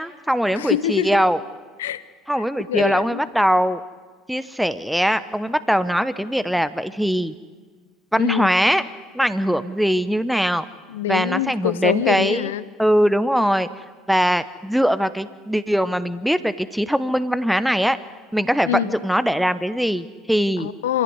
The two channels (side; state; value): both; normal; correlation 0.83